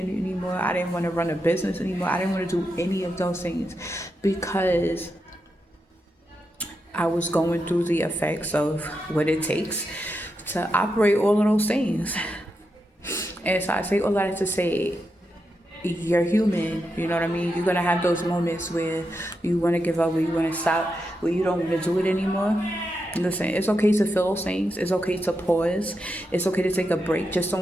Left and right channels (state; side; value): normal; both; correlation 0.86